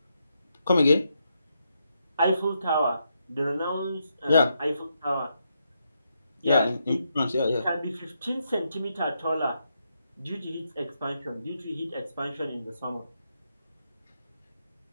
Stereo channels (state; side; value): inverted; both; correlation -0.81